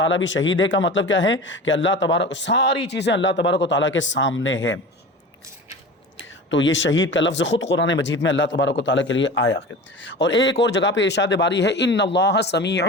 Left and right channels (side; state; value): both; normal; correlation 0.33